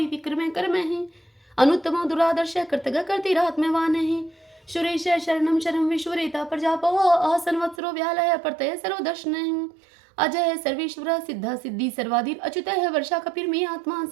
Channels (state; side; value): drops out; left; at 7.8 s